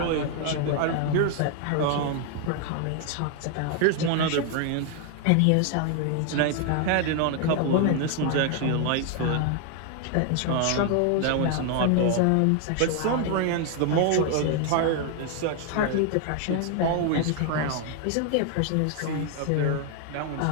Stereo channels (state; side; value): different; both; correlation 0.00